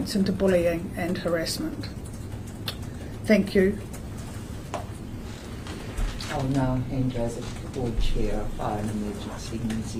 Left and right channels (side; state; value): both; identical; correlation 1.00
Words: into bullying and harassment. Thank you. I'll now hand over to the Board Chair of Fire and Emergency New